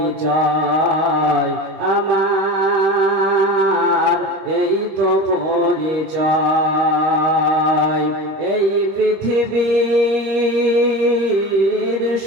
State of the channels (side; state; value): left; late; 26 ms